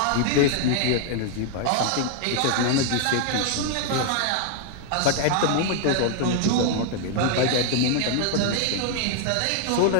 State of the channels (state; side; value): different; both; correlation 0.00